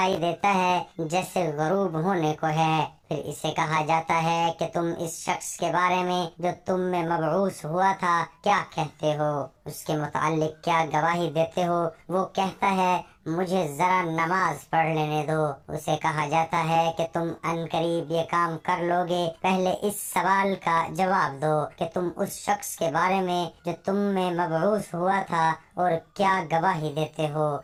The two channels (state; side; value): identical; both; correlation 1.00